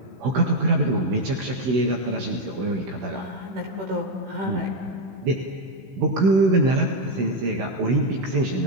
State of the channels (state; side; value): late; left; 16 ms